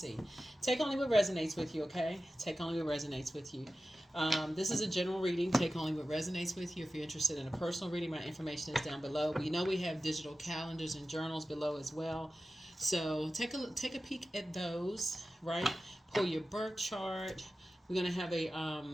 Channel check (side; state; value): both; normal; correlation 0.94